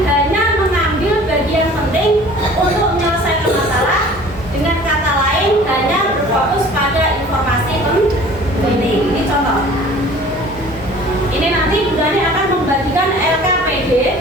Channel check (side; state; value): both; normal; correlation 0.47